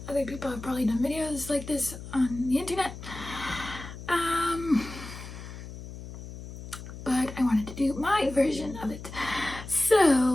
other people have probably done videos like this on the internet, but I wanted to do my version of it.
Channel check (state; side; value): noise; left; hum, 12 dB below the sound